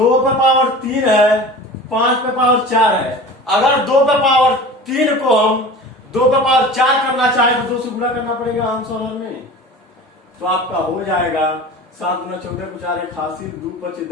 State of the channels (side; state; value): both; normal; correlation 0.37